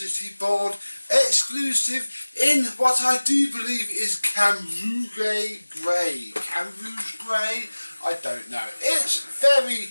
board exclusive in what I do believe is Camouflage Grey. Camouflage Grey? I don't know. It's very,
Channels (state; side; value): inverted; both; correlation -1.00